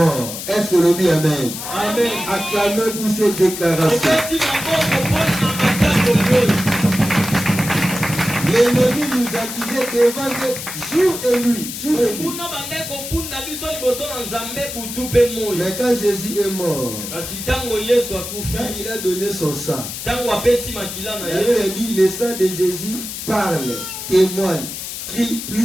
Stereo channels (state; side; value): noise; left; hiss, 8 dB below the sound